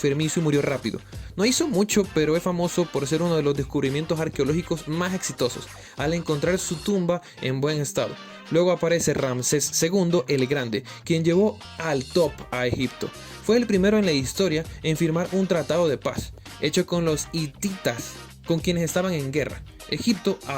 y murió rápido. No hizo mucho, pero es famoso por ser uno de los descubrimientos arqueológicos más exitosos, al encontrar su tumba en buen estado. Luego aparece Ramsés II el Grande, quien llevó al top a Egipto. Fue el primero en la historia en firmar un tratado de paz, hecho con los hititas, con quienes estaban en guerra. Egipto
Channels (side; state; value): both; identical; correlation 1.00